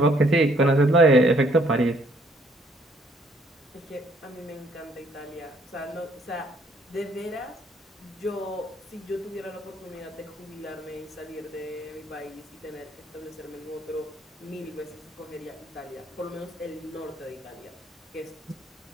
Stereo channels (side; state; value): both; normal; correlation 0.65